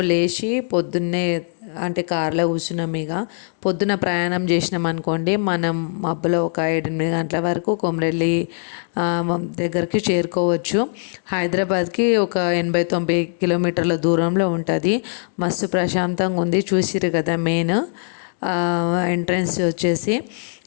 లేచి పొద్దున్నే అంటే కార్లో కూర్చున్నాం. ఇక పొద్దున ప్రయాణం చేసినాం అనుకోండి, మనం మబ్బులో ఒక 7-8 గంటల వరకు కొమరేలి దగ్గరికి చేరుకోవచ్చు. హైదరాబాద్కి ఒక 80-90 కిలోమీటర్ల దూరంలో ఉంటుంది. మస్తు ప్రశాంతంగా ఉంది. చూసిరు కదా మెయిన్ ఎంట్రన్స్ వచ్చేసి.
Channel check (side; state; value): right; silent; 61 dB below the other